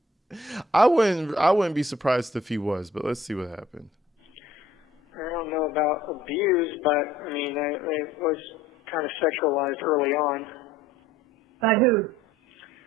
I wouldn't be surprised if he was, but let's see what happened. I don't know about abuse, but I mean, I was kind of sexualized early on. By who?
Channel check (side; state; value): both; normal; correlation 0.55